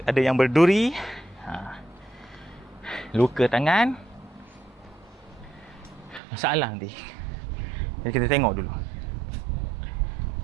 ada yang berduri. Luka tangan. Masalah nanti. Jadi kita tengok dulu.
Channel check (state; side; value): drops out; left; at 6.2 s